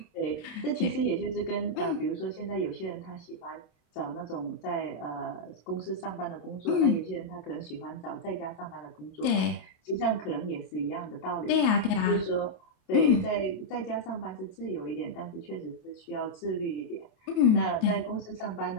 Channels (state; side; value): late; right; 28 ms